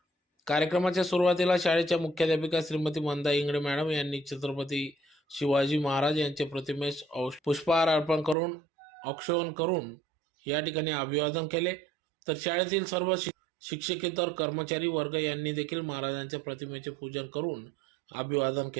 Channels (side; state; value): left; drops out; at 8.3 s